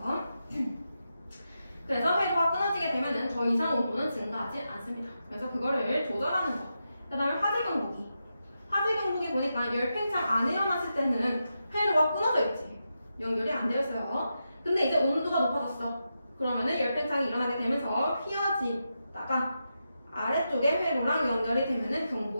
그래서 회로가 끊어지게 되면은 더 이상 온도는 증가하지 않습니다. 그래서 그거를 조절하는 거. 그 다음에 화재 경보기. 화재 경보기 보니까 열팽창 안 일어났을 때는 회로가 끊어져 있지. 연결이 안 되어 있어요. 근데 이제 온도가 높아졌어. 그러면은 열팽창이 일어나게 되면서 휘어지다가 아래쪽에 회로랑 연결이 되면은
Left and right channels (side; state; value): both; inverted; correlation -0.87